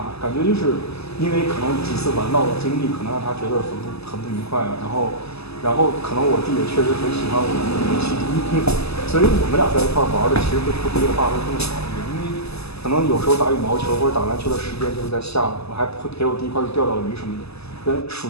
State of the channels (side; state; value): right; late; 0.79 ms